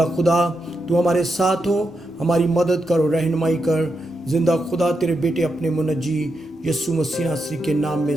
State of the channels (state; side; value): normal; both; correlation 0.85